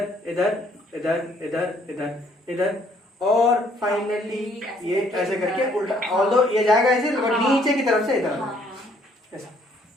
इधर इधर इधर इधर इधर और फाइनली ये ऐसे करके उल्टा, ऑल्दो ये जाएगा ऐसे और नीचे की तरफ से इधर ऐसा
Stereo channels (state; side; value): normal; both; correlation 0.64